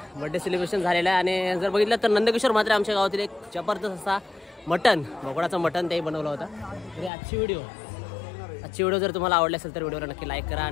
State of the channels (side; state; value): right; drops out; at 7.1 s